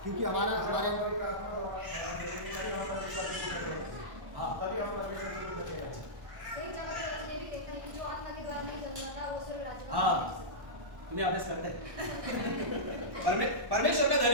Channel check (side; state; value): left; late; 1.1 ms